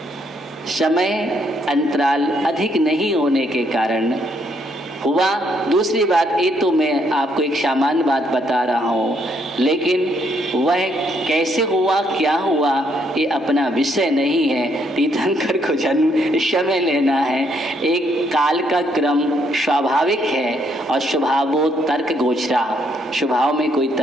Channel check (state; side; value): normal; both; correlation 0.72